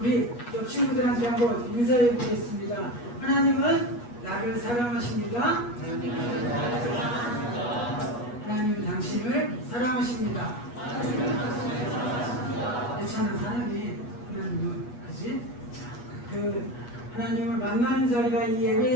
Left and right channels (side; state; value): right; late; 8.3 ms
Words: 옆 친구들한테 한번 인사해 보겠습니다. 하나님은 나를 사랑하십니다. 하나님은 당신을 사랑하십니다. 괜찮은 사람이 하나님은 그지? 그 하나님을 만나는 자리가 이